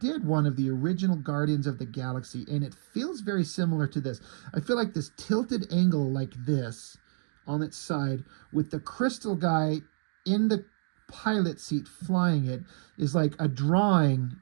one of the original Guardians of the Galaxy, and it feels very similar to this. I feel like this tilted angle like this on its side with the crystal guy in the pilot seat flying it is like a drawing,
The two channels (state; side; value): silent; left; digital silence